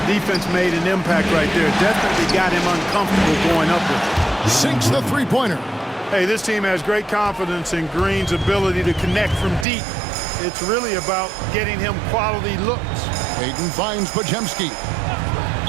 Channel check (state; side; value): drops out; left; at 9.7 s